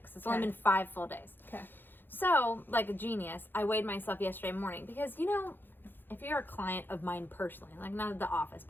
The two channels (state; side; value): late; right; 0.096 ms